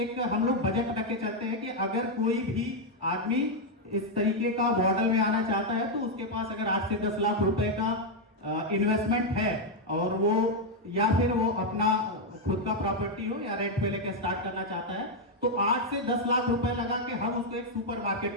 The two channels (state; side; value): normal; both; correlation 0.00